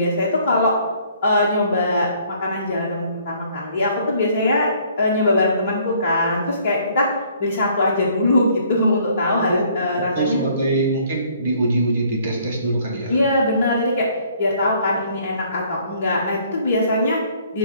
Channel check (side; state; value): both; inverted; correlation -0.61